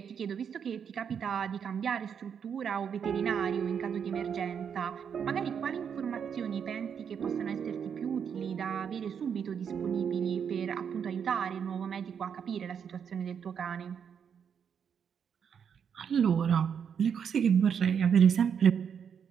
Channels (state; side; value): quieter; left; 7.4 dB